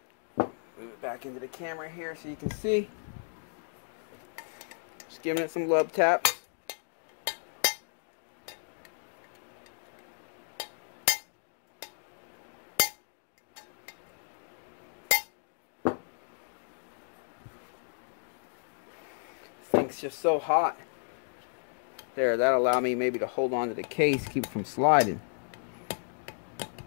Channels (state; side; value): silent; right; digital silence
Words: Back into the camera here so you can see. Just giving it some love taps. This thing's just so hot. There, that'll allow me maybe to hold on to the case, keep it from sliding.